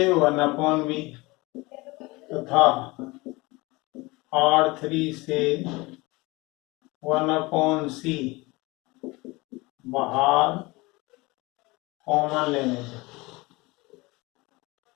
1/b तथा R3 से 1/c बाहर कॉमन लेने से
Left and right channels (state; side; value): quieter; right; 23.3 dB